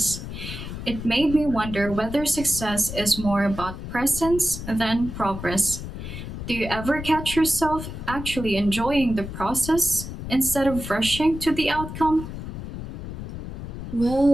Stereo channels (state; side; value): noise; left; rumble, 8 dB below the sound